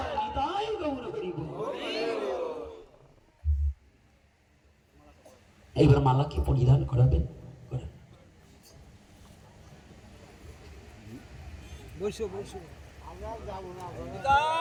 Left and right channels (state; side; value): identical; both; correlation 1.00